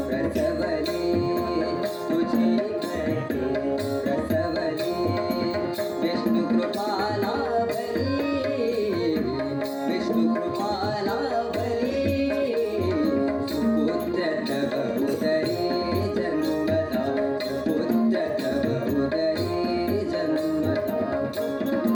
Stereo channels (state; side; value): identical; both; correlation 1.00